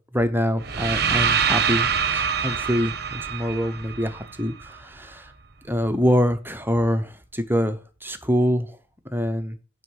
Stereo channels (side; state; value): both; normal; correlation 0.61